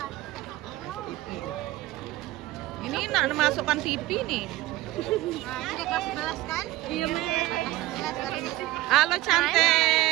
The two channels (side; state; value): left; quieter; 17.3 dB